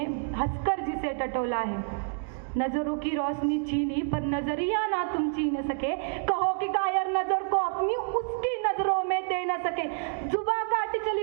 हंसकर जिसे टटोला है। नजरों की रोशनी छीनी पर नजरिया ना तुम छीन सके, कहो कि कायर नजर को अपनी उसकी नजरों में दे न सके। जुबा काटी चली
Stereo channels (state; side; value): silent; left; 59 dB below the other